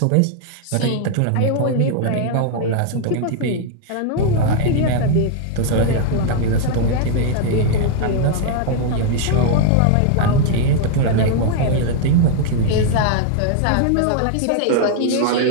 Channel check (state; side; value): different; both; correlation 0.00